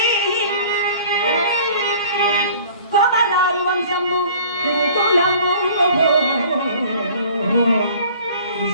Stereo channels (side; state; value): both; inverted; correlation -0.49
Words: కొమరారు వంశము కులము